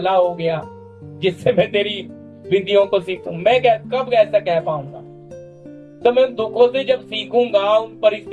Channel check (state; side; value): identical; both; correlation 1.00